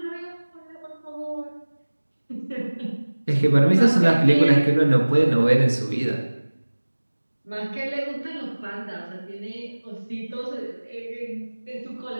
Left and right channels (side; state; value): both; inverted; correlation -1.00